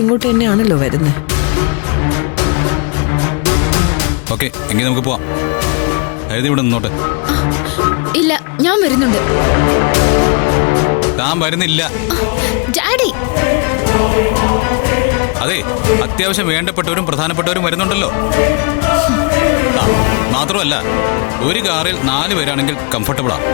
ഇങ്ങോട്ട് തന്നെയാണല്ലോ വരുന്നത്. ഓക്കെ, എങ്കിൽ നമുക്ക് പോവാം. അതായത് ഇവിടെ നിന്നോട്ടെ. ഇല്ല, ഞാൻ വരുന്നുണ്ട്. താൻ വരുന്നില്ല. ഡാഡി, അതെ, അത്യാവശ്യം വേണ്ടപ്പെട്ടവരും പ്രധാനപ്പെട്ടവരും വരുന്നുണ്ടല്ലോ. മാത്രമല്ല, ഒരു കാറിൽ 4 പേരാണെങ്കിൽ കംഫർട്ടബിളാ.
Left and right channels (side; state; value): right; quieter; 35.5 dB